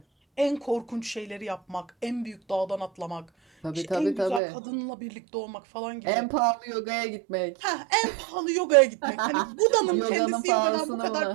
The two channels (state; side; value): drops out; left; at 4.4 s